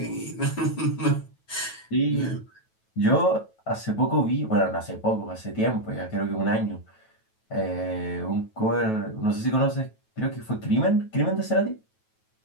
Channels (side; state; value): right; late; 9.2 ms